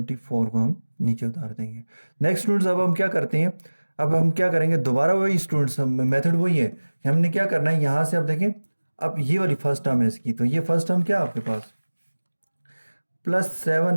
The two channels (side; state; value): both; inverted; correlation -1.00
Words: को हम नीचे उतार देंगे। नेक्स्ट स्टूडेंट्स अब हम क्या करते हैं, अब हम क्या करेंगे, दोबारा वही स्टूडेंट्स मेथड वही है कि हमने क्या करना है, यहाँ से अब देखें, अब ये वाली फर्स्ट टर्म है इसकी, तो ये फर्स्ट टर्म क्या है आपके पास,